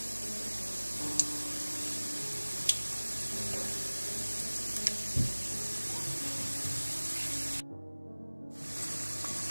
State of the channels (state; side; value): inverted; both; correlation -1.00